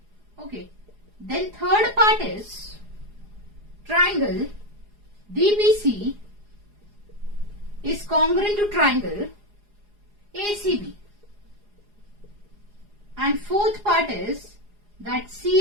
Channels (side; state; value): left; late; 4.8 ms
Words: Okay. Then third part is triangle DBC is congruent to triangle ACB. And fourth part is that